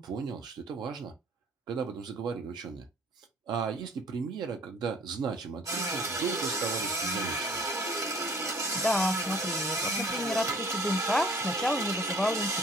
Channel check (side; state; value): both; normal; correlation 0.54